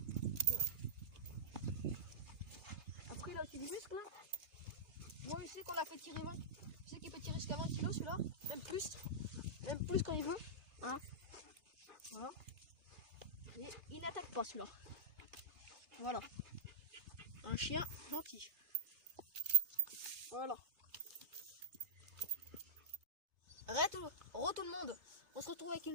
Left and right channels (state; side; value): late; left; 3.3 ms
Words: Après il a aussi du muscle, hein. Bon, je sais qu'on l'a fait tirer 20. Je sais qu'il peut tirer jusqu'à 20 kg celui-là, même plus quand il veut. Hein, voilà. Et il n'attaque pas celui-là. Voilà. Un chien gentil. Voilà. Re tout le monde. On se retrouve avec